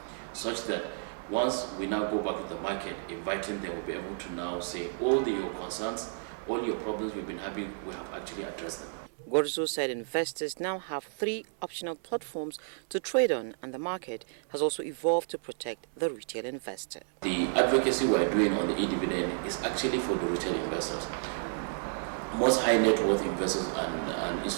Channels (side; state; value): left; silent; 57 dB below the other